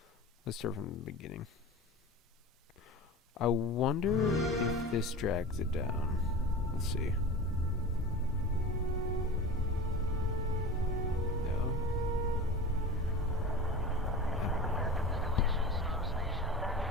Let's start from the beginning. I wonder if this drags it down. Let's see. No.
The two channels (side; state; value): both; normal; correlation 0.32